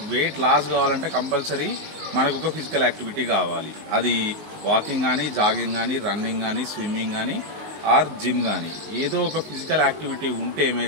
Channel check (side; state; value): left; late; 19 ms